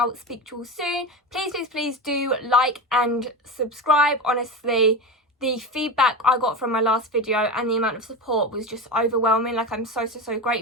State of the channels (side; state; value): both; normal; correlation 0.22